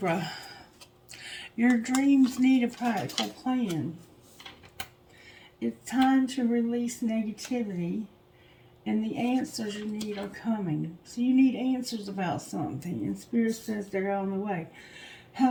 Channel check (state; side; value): identical; both; correlation 1.00